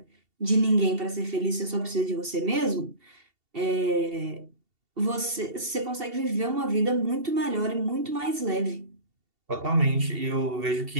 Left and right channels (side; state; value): left; late; 2.7 ms